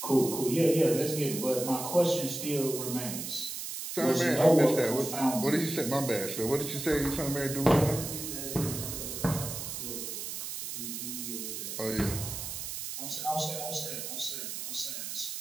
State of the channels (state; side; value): noise; right; hiss, 6 dB below the sound